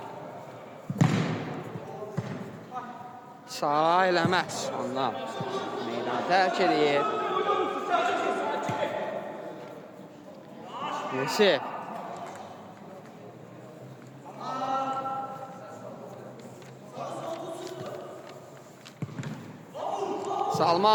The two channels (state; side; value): identical; both; correlation 1.00